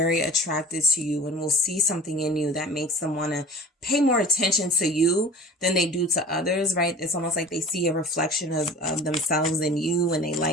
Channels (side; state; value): both; normal; correlation 0.41